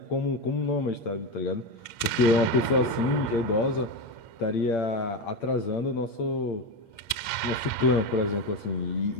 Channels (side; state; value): right; late; 8.7 ms